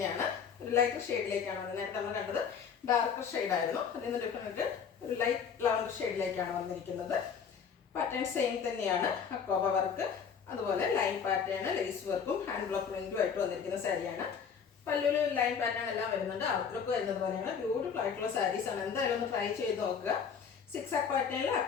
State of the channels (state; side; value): quieter; right; 6.8 dB